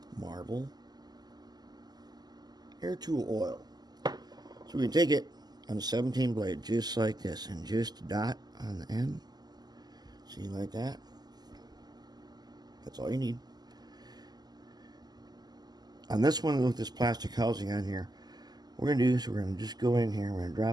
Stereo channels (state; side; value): late; left; 0.20 ms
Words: Marvel air tool oil. So we can take it on a 17 blade just like this, and just dot on the end. See, like that. That's all you need. On this one with this plastic housing on here, what we're going to do is we're going to just go in here, we're going to